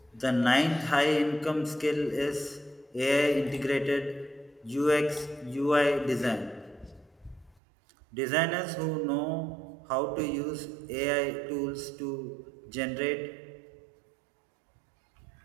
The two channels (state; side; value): drops out; left; at 7.6 s